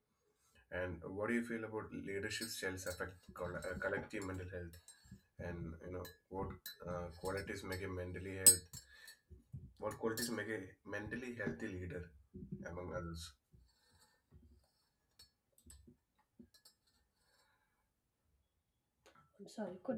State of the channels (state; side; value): identical; both; correlation 1.00